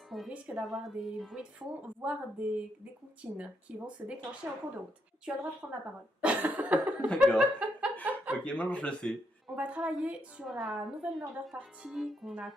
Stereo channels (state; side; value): normal; both; correlation 0.78